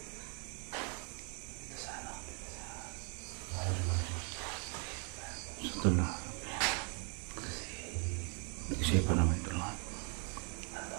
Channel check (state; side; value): quieter; left; 37.6 dB